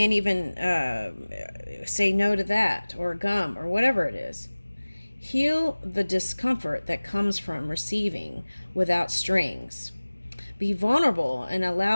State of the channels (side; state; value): both; inverted; correlation -1.00